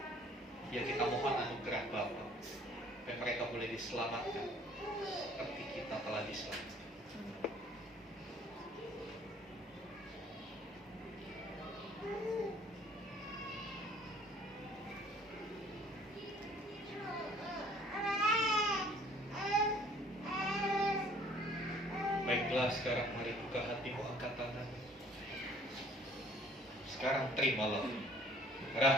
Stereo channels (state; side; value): normal; both; correlation 0.55